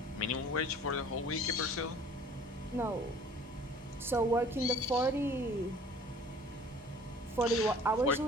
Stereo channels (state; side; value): normal; both; correlation 0.50